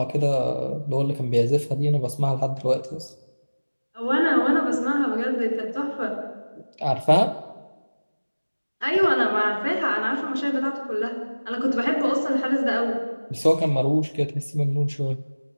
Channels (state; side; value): inverted; both; correlation -1.00